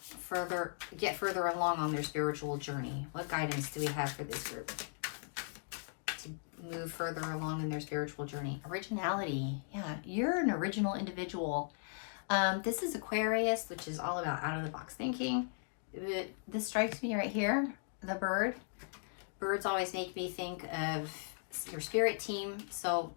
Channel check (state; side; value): silent; right; digital silence